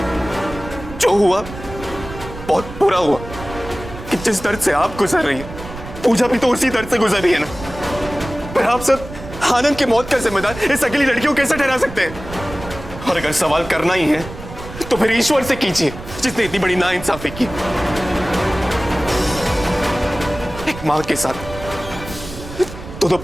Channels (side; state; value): right; noise; rumble, 13 dB below the sound